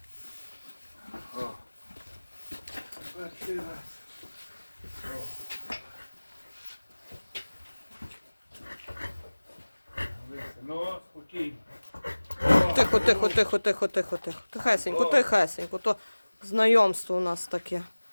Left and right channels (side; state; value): both; inverted; correlation -1.00